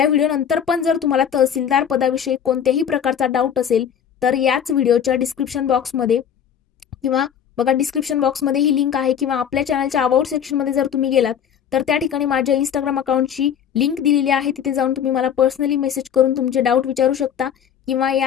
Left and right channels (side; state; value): right; quieter; 8.6 dB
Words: व्हिडिओ नंतर पण जर तुम्हाला तहसीलदार पदाविषयी कोणत्याही प्रकारचा डाऊट असेल तर याच व्हिडिओच्या डिस्क्रिप्शन बॉक्समध्ये किंवा बघा डिस्क्रिप्शन बॉक्समध्ये ही लिंक आहे किंवा आपल्या चॅनलच्या अबाउट सेक्शनमध्ये जर तुम्ही गेलात तर त्या ठिकाणी माझ्या इंस्टाग्राम अकाउंटची लिंक दिलेली आहे. तिथे जाऊन तुम्ही मला पर्सनली मेसेज करून तुमचे डाऊट विचारू शकता किंवा